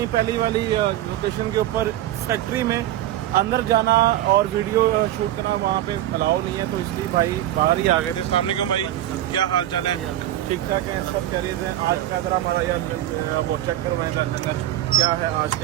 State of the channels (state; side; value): quieter; left; 13.5 dB